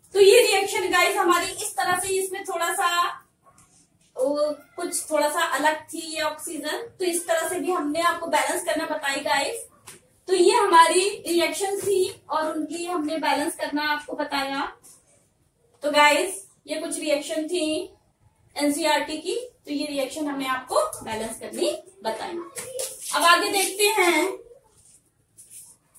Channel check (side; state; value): both; identical; correlation 1.00